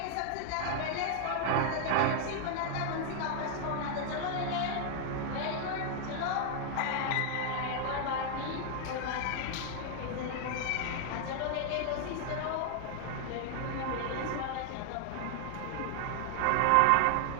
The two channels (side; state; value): both; different; correlation 0.00